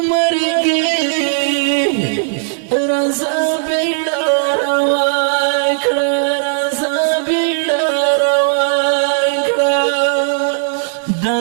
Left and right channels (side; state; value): left; silent; 69 dB below the other